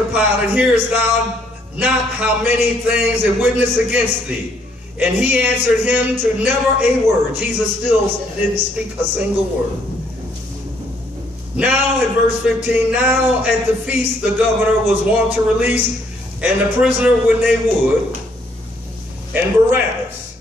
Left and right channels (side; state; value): both; normal; correlation 0.68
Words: Pilate, hearest thou not how many things they witness against thee? And he answered him to never a word. Jesus still didn't speak a single word. Now in verse 15, now at the feast the governor was wont to release and the prisoner when they would, and Barabbas.